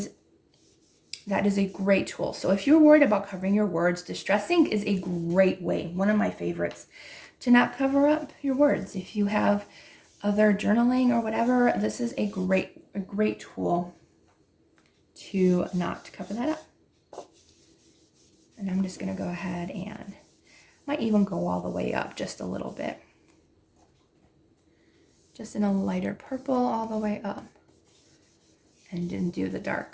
a great tool. So if you're worried about covering your words, Distress ink is a great way, one of my favorites, to not cover up your words. If you have other journaling or whatever, this is a great tool to not cover that up. And I'm just going to go ahead and might even go all the way up just a little bit. Just in a lighter purple all the way up. And then do the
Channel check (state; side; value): identical; both; correlation 1.00